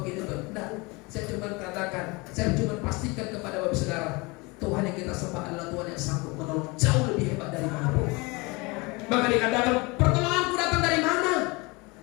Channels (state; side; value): quieter; right; 26.1 dB